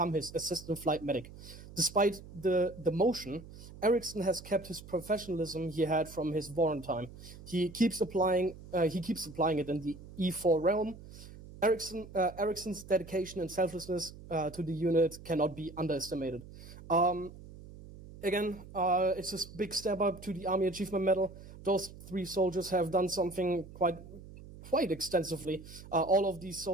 his assistant flight medic. Despite the demotion, Eriksson has kept his professionalism he had from his warrant time. He keeps applying it in the E4 realm. Eriksson's dedication and selflessness to the unit cannot be underestimated. Again, it's a big step up to the Army Achievement Medal. Those 3 soldiers have done something quite extensively. All of these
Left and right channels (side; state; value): right; noise; hum, 16 dB below the sound